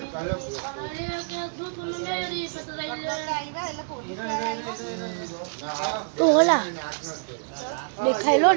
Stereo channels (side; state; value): left; silent; 60 dB below the other